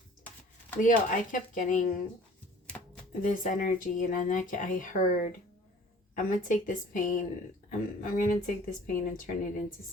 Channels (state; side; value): normal; both; correlation 0.49